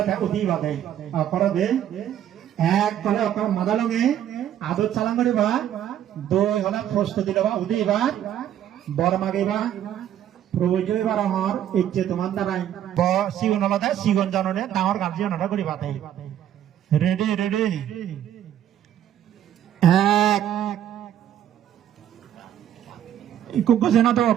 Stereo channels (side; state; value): left; quieter; 10.7 dB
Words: উদি বাদে করবে এক কলে মাদালঙে আদর চালান করিবা দুই হলে প্রস্তুতি লওয়া উদি এবার বর মাগিবা প্রয়োজন এবার আমার ইচ্ছে তোমার দ্বারাই সিগুন হলে সিগুন জাননে ডাঙর গার্জিয়ান হলে করিবা রেডি রেডি এক গজনা